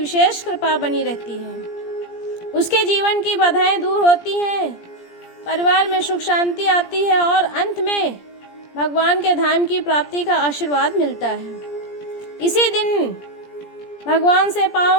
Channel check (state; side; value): late; right; 17 ms